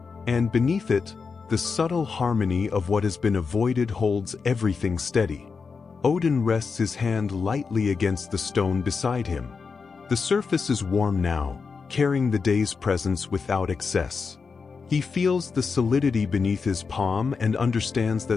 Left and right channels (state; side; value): quieter; right; 5.1 dB